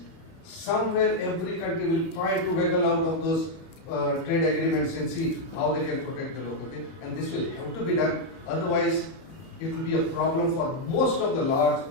Somewhere every country will try to wiggle out of those trade agreements and see how they can protect the local thing. And this will have to be done. Otherwise, it will be a problem for most of the large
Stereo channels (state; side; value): late; right; 31 ms